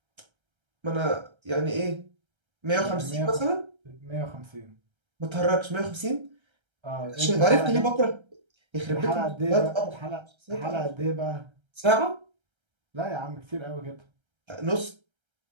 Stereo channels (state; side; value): late; left; 1.3 ms